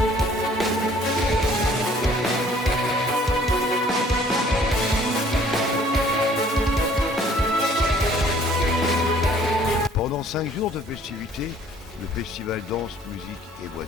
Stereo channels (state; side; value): normal; both; correlation 0.57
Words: Pendant 5 jours de festivités, le festival Danse, Musique et Voix